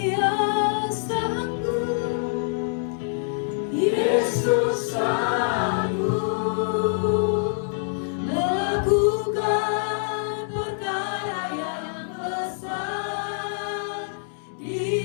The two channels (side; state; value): right; silent; 62 dB below the other